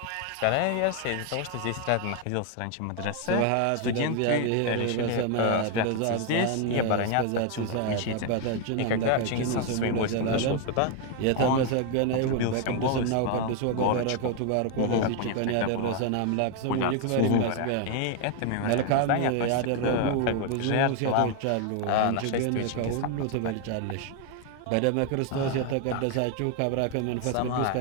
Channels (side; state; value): both; different; correlation 0.01